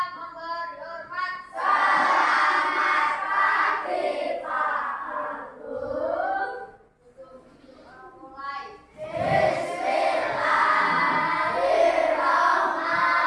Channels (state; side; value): identical; both; correlation 1.00